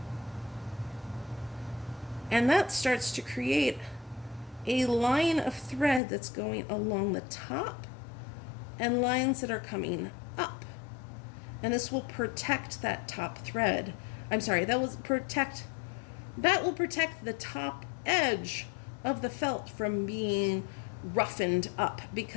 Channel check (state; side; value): drops out; right; at 6.0 s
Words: And that starts to create a line of thread that's going along the top and lines that are coming up. And this will protect that top thread. I'm sorry, that will protect the top edge of the felt from being roughened up,